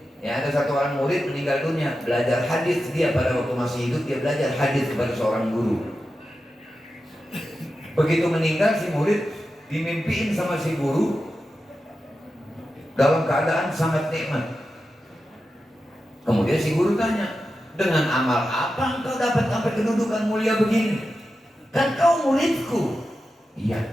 Ya, ada satu orang murid meninggal dunia, belajar hadis dia pada waktu masih hidup, dia belajar hadis kepada seorang guru. Begitu meninggal si murid dimimpiin sama si guru dalam keadaan sangat nikmat. Kemudian si guru tanya, dengan amal apa engkau dapat sampai kedudukan mulia begini? Kan kau muridku.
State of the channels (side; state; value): both; normal; correlation 0.91